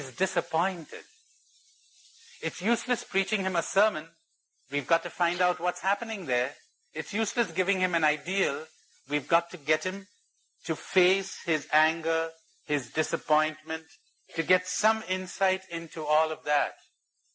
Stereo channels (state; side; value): identical; both; correlation 1.00